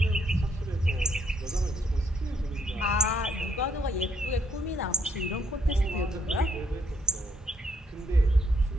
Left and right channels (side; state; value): both; normal; correlation 0.71